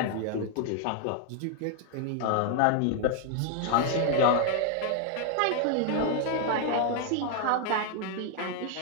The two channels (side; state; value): both; different; correlation 0.00